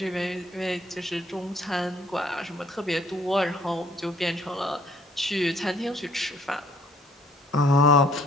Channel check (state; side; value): normal; both; correlation 0.60